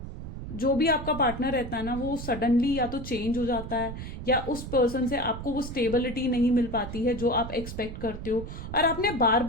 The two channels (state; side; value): noise; right; rumble, 9 dB below the sound